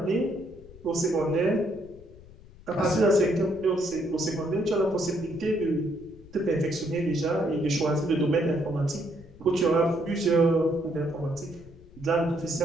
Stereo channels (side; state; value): left; noise; rumble, 21 dB below the sound